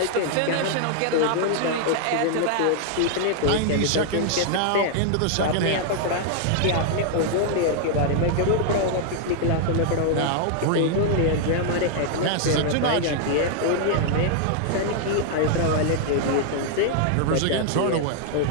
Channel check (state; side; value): different; both; correlation 0.00